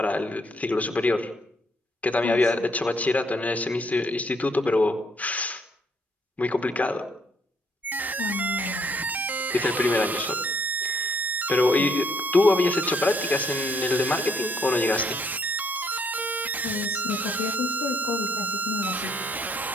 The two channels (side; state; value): both; normal; correlation 0.69